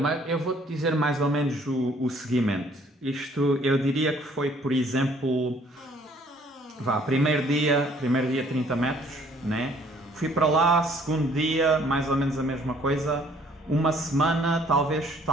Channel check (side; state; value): both; normal; correlation 0.60